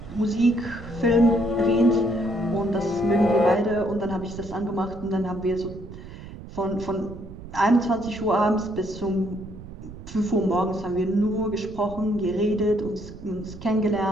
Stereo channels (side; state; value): right; noise; rumble, 14 dB below the sound